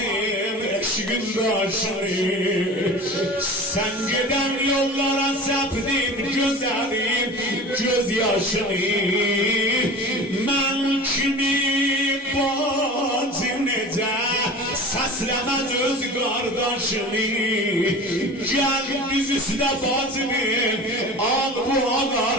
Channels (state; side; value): normal; both; correlation 0.36